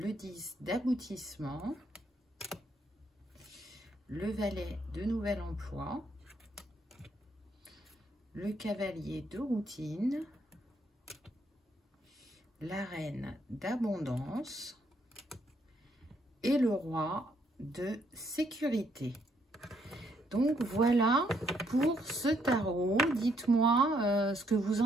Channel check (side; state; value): both; normal; correlation 0.72